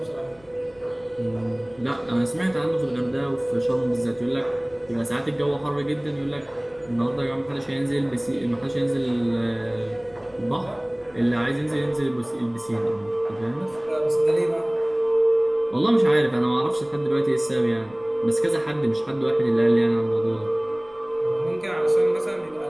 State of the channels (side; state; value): left; noise; rumble, 28 dB below the sound